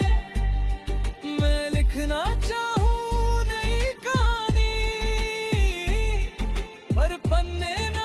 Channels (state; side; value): identical; both; correlation 1.00